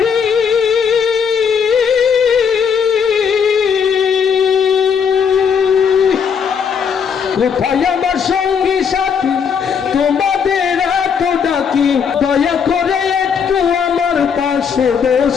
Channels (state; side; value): quieter; right; 6.8 dB